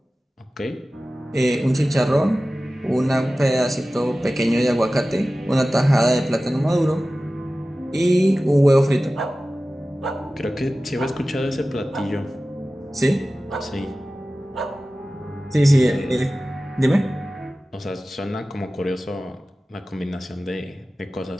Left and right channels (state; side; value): normal; both; correlation 0.96